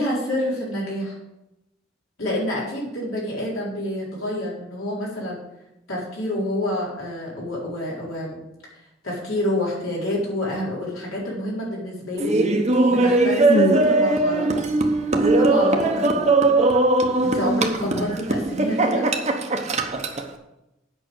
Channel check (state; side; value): normal; both; correlation 0.39